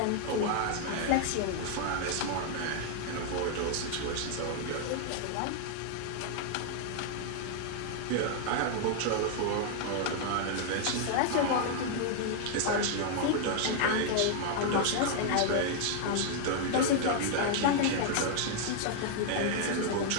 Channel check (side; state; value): both; different; correlation 0.00